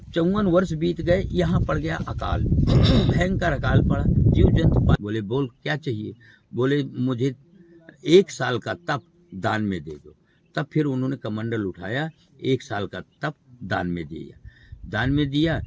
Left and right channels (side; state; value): both; identical; correlation 1.00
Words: 54 वर्ष बीत गए, यहाँ पड़ गया अकाल, भयंकर अकाल पड़ा। जीव जंतु बोले बोल क्या चाहिए? बोले मुझे 1 साल का तप दान में दे दो। तब फिर उन्होंने कमंडल उठाया, 1 साल का तप दान में दिया।